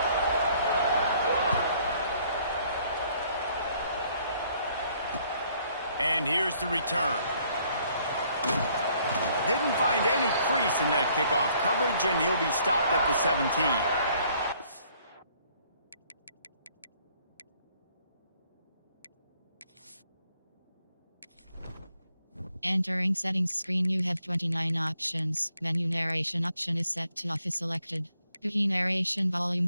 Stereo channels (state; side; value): inverted; both; correlation -0.65